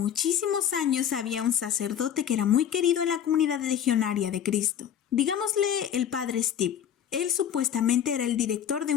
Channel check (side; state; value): right; quieter; 9.3 dB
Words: años había un sacerdote que era muy querido en la comunidad legionaria de Cristo. Digámosle el padre Steve. Él supuestamente era el director de